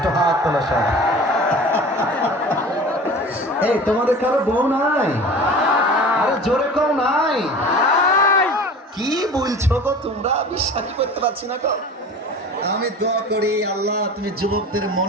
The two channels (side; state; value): both; normal; correlation 0.38